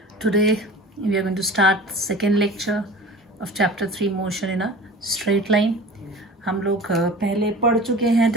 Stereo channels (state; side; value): normal; both; correlation 0.37